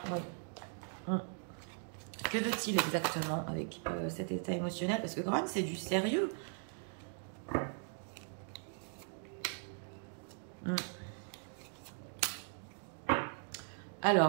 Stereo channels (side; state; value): left; silent; 52 dB below the other